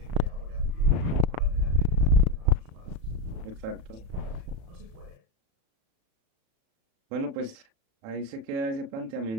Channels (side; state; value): left; late; 35 ms